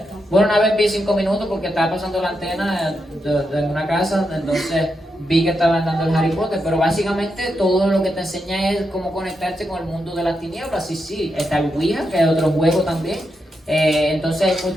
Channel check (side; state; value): both; normal; correlation 0.85